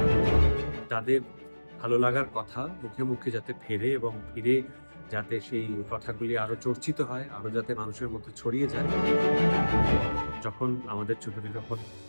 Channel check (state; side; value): inverted; both; correlation -1.00